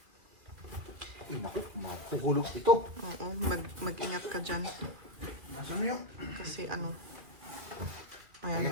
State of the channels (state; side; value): late; left; 2.7 ms